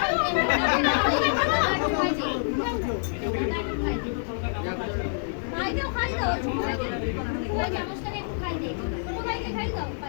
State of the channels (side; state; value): right; silent; digital silence